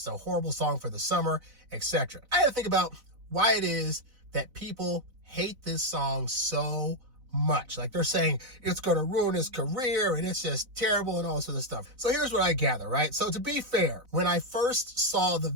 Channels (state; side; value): late; left; 4.0 ms